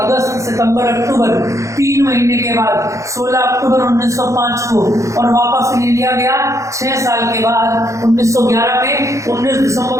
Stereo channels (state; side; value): late; left; 0.15 ms